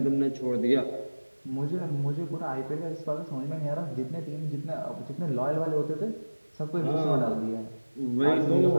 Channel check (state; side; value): inverted; both; correlation -1.00